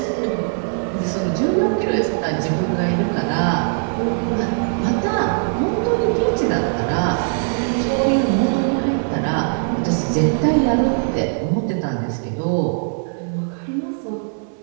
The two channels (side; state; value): left; silent; 65 dB below the other